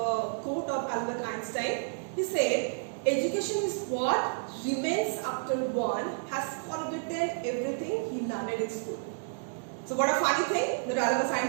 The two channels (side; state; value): left; silent; digital silence